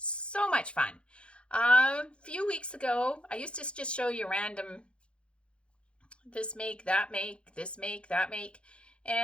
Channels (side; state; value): right; late; 0.058 ms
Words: much fun. A few weeks ago, I used to just show you random this make, that make, this make, that make.